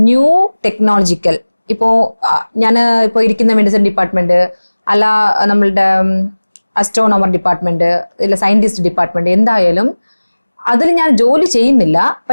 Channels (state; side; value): inverted; both; correlation -1.00